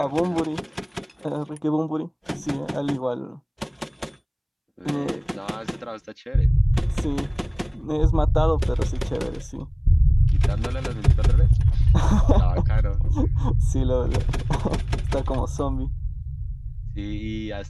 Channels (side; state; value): both; identical; correlation 1.00